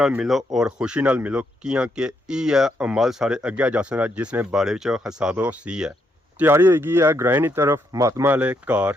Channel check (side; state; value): both; normal; correlation 0.77